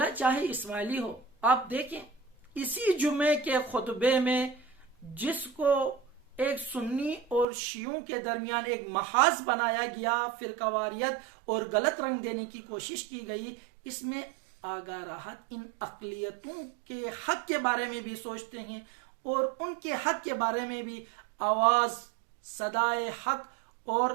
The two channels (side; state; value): left; drops out; at 7.5 s